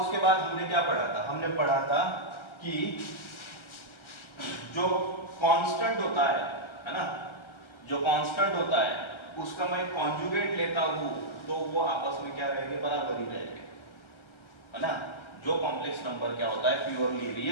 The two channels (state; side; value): late; right; 1.4 ms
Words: उसके बाद हमने क्या पढ़ा था? हमने पढ़ा था कि जो कांस्टेंट होता है ना, जो कांस्टेंट होता है उसका मैं कॉन्जुगेट लेता हूं तो वो आपस में क्या रहेंगे? बराबर ही रहेंगे, है ना. जो कॉम्प्लेक्स नंबर क्या होता है? प्योरली